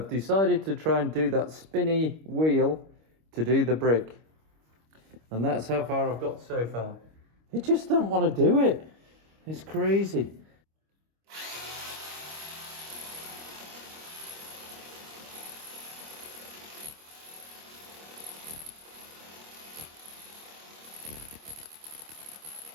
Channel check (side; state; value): left; late; 25 ms